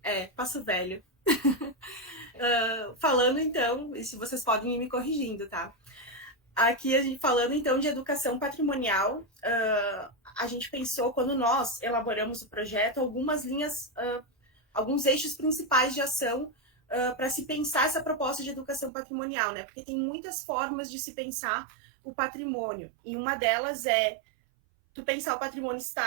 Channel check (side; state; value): left; drops out; at 18.9 s